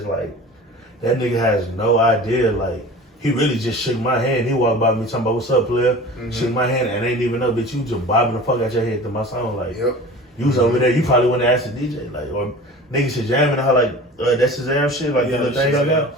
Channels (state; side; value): normal; both; correlation 0.39